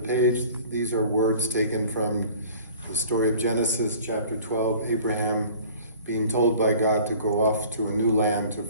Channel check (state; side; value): inverted; both; correlation -0.47